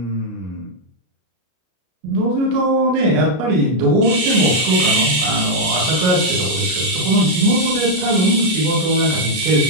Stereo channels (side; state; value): left; late; 33 ms